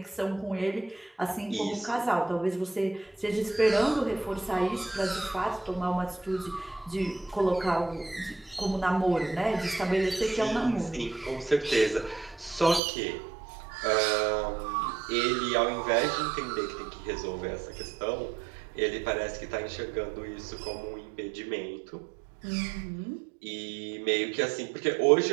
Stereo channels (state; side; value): drops out; left; at 12.8 s